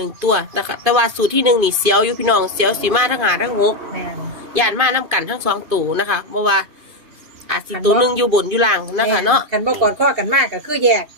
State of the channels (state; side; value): late; left; 2.5 ms